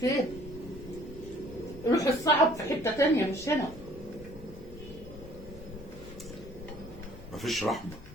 ماشي. روح الصعب في حتة تانية مش هنا. مفيش رحمه.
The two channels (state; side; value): normal; both; correlation 0.56